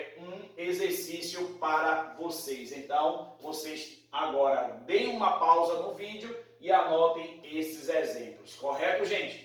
um exercício para vocês. Então, vocês agora deem uma pausa no vídeo e anotem esses exemplos. Correto,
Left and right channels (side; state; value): both; identical; correlation 1.00